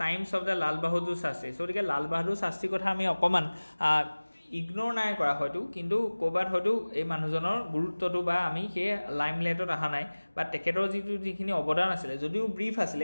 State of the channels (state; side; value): inverted; both; correlation -1.00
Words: times of the Lal Bahadur Shastri. So gotike Lal Bahadur Shastri kotha ami okoman ignore নাই করা হয়তো কিন্তু কোবাত হয়তো এই মানুহজনৰ গুৰুত্বটো বা আমি হে লাইমলাইটত আহা নাই বা তেখেতৰ যিখিনি অৱদান আছিল যদিও ব্ৰিফ আছিল